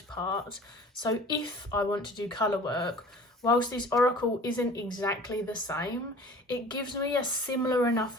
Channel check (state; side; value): normal; both; correlation 0.45